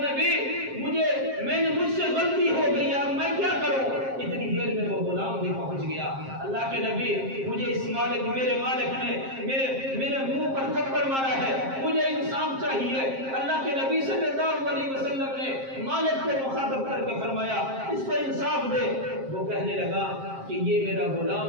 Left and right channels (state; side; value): late; left; 7.5 ms